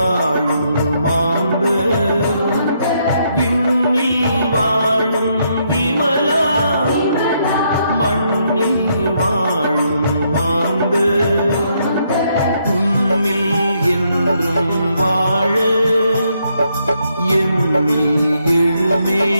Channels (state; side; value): inverted; both; correlation -0.75